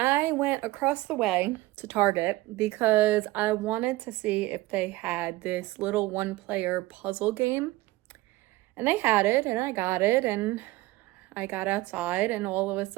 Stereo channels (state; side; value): quieter; left; 19.2 dB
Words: went across the way to Target because I wanted to see if they had this little one-player puzzle game, and they had it, and I got it, and I got outside, and all of a